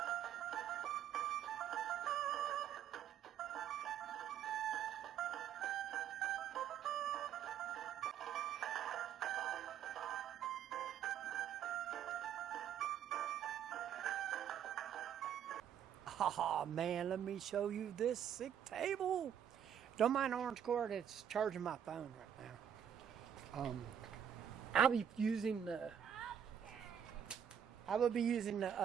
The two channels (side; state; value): left; quieter; 8.9 dB